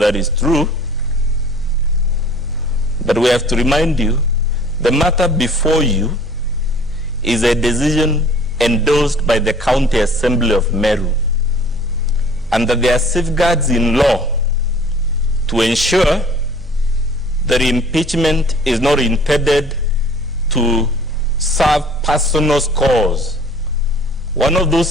is true. But we have to remind you, the matter before you is a decision endorsed by the County Assembly of Meru, and that there are safeguards in law to ensure that impeachment is not intended to serve personal cause. One of those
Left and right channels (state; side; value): normal; both; correlation 0.51